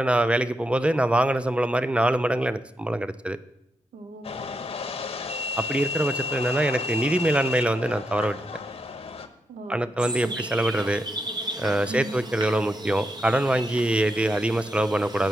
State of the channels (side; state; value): both; normal; correlation 0.83